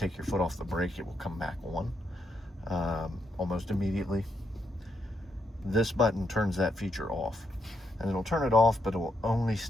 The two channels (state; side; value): normal; both; correlation 0.79